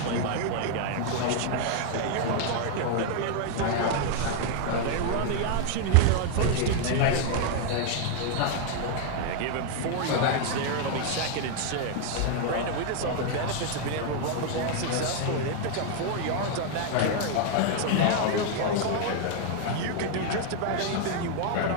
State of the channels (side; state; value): both; different; correlation 0.00